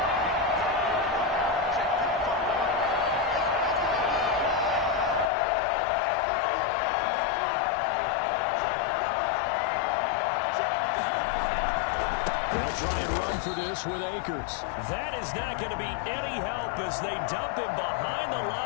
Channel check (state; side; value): drops out; right; at 5.3 s